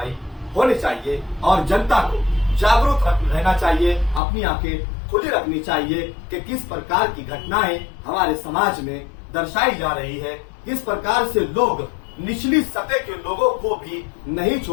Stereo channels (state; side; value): drops out; right; at 4.2 s